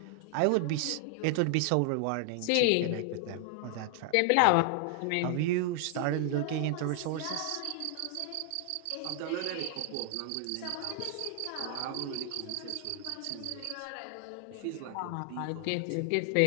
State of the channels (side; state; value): both; different; correlation 0.00